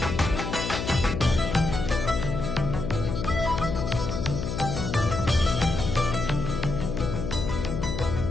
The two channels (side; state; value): left; noise; hum, 3 dB below the sound